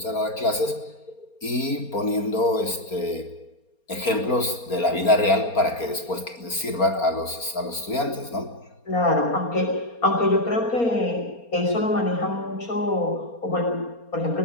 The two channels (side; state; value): right; late; 4.3 ms